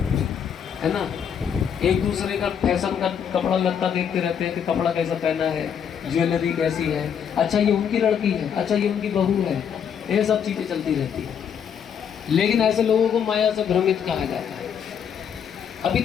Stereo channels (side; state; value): right; quieter; 8.0 dB